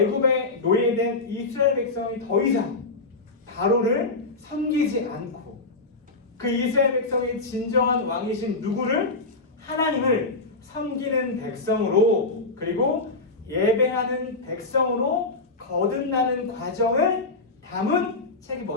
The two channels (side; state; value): right; quieter; 3.4 dB